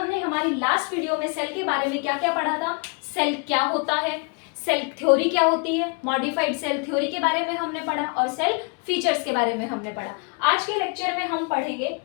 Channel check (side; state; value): right; quieter; 34.8 dB